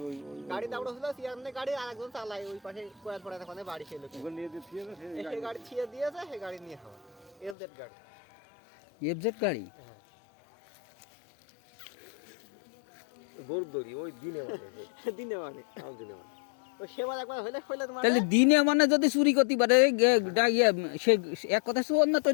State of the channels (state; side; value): drops out; right; at 7.6 s